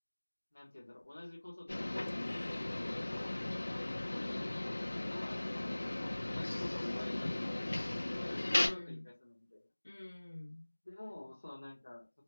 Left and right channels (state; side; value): inverted; both; correlation -1.00